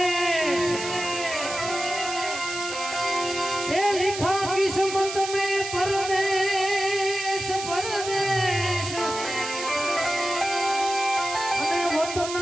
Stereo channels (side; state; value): right; noise; hiss, 8 dB below the sound